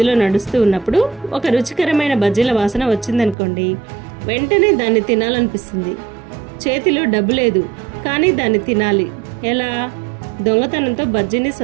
నడుస్తూ ఉన్నప్పుడు ఒక రుచికరమైన బజ్జీల వాసన వచ్చిందనుకోండి, వెంటనే దాన్ని తినాలనిపిస్తుంది. చేతిలో డబ్బు లేదు, కానీ దాన్ని తినాలి. ఎలా? దొంగతనంతో బజ్జీని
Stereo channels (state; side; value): drops out; left; at 3.4 s